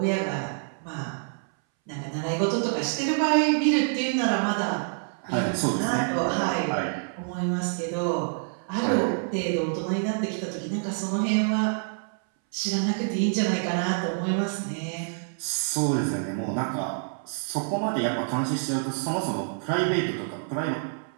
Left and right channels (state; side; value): silent; left; 60 dB below the other